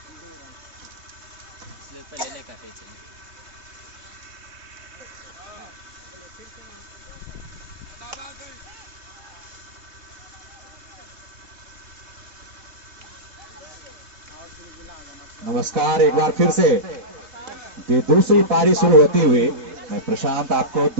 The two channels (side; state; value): left; late; 3.9 ms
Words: स्लिप पे लेने का पीछे नमस्कार। एक बार फिर से दूसरी पारी शुरू होती हुई मैं प्रशांत आपको